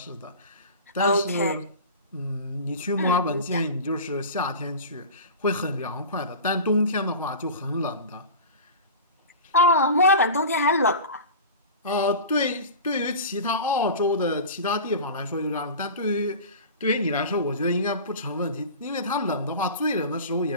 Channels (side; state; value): both; inverted; correlation -0.34